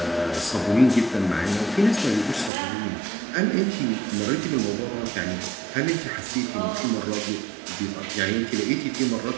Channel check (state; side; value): drops out; left; at 2.5 s